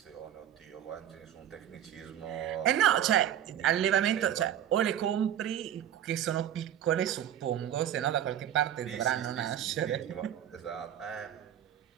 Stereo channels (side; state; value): left; quieter; 10.6 dB